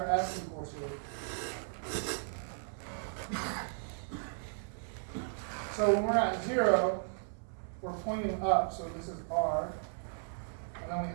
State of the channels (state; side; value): silent; left; 54 dB below the other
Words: s equal to? So when we're at 0, we're pointing up, so this is r. And then we